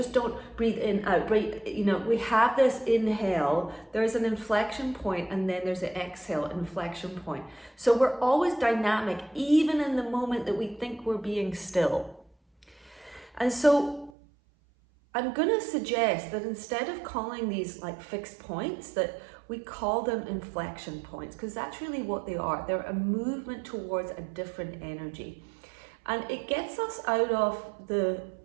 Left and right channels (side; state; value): left; drops out; at 14.1 s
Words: don't breathe in, out, breathe, we have this inhale, there's an inflection point, and then there's an exhale, inflection point. So we're always dynamic, even in the moment that we think we're being still. And so I'm going to suggest that instead of calling these like fixed points, that we call them inflection points, because that's really what they are. They're a movement towards a different energy. And it gets us out of the